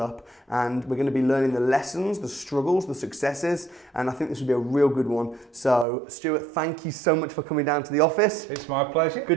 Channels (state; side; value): drops out; left; at 5.9 s